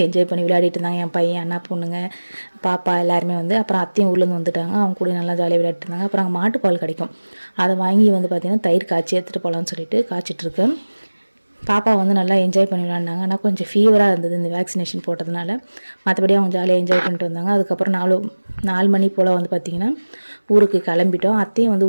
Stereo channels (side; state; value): both; inverted; correlation -1.00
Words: என்ஜாய் பண்ணி விளையாடிட்டு இருந்தாங்க. என் பையன், அண்ணா பொண்ணுங்க, பாப்பா எல்லாருமே வந்து. அப்புறம் அத்தையும் ஊர்லேருந்து வந்துட்டாங்க. அவங்க கூட நல்லா ஜாலியாக விளையாட்டு இருந்தாங்க. அப்புறம் அங்கே மாட்டுப்பால் கிடைக்கும், அதை வாங்கி வந்து பார்த்திங்கன்னா தயிர் காய்ச்சி எடுத்துகிட்டு போகலான்னு சொல்லிட்டு காய்ச்சிட்ருக்கேன். பாப்பா வந்து நல்லா என்ஜாய் பண்ணி விளாண்டாங்க. ஆனால் கொஞ்சம் ஃபீவராக இருந்தது இந்த வேக்சினேஷன் போட்டதுனால. மற்றபடி அவங்க ஜாலியாக என்ஜாய் பண்ணிட்டு வந்தாங்க. அதுக்கப்புறம் 4 மணி போல் வந்து பார்த்திங்கன்னா ஊருக்கு கிளம்பிட்டோம். அத்தையும் வந்து